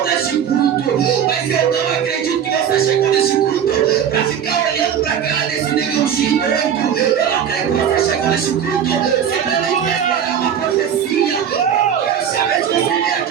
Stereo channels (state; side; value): quieter; left; 8.7 dB